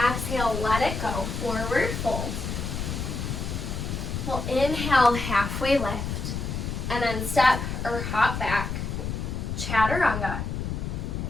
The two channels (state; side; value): noise; left; rumble, 4 dB below the sound